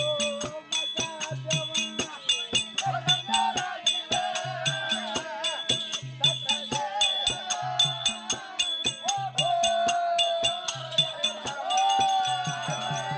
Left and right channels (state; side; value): identical; both; correlation 1.00